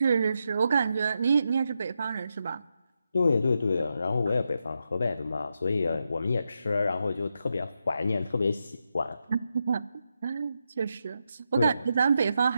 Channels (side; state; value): both; inverted; correlation -0.85